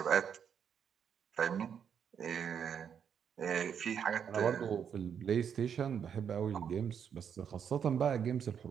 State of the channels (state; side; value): quieter; left; 7.8 dB